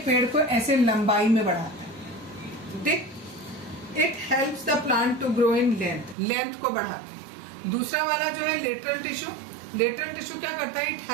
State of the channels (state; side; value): drops out; left; at 6.2 s